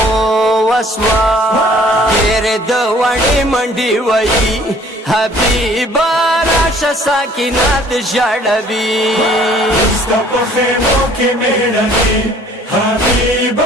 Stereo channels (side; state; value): both; normal; correlation 0.56